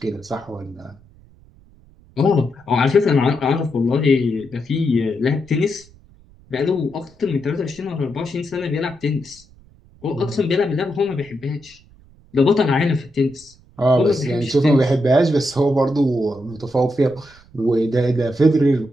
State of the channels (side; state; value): right; noise; rumble, 27 dB below the sound